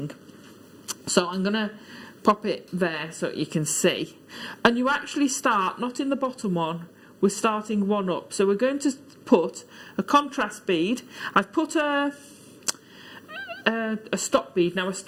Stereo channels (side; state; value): both; identical; correlation 1.00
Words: So I'm going to pop it there so you can see. And you actually start, not in the bottom one, we're starting one up. So we're going to put a contrast bead. I've put a stop bead. Now a